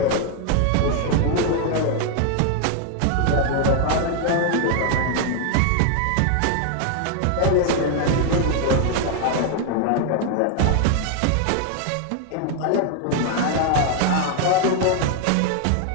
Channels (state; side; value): different; both; correlation 0.00